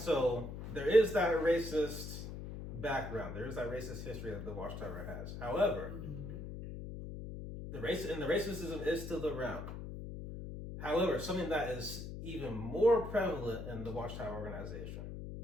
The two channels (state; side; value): noise; left; hum, 8 dB below the sound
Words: there is that racist background. There is that racist history that the Watchtower has. However, the racism is still around. However, something that is even more prevalent in the Watchtower organization,